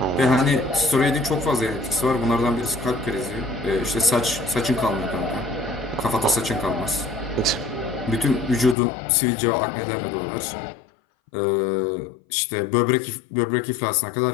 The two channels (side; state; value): right; drops out; at 8.8 s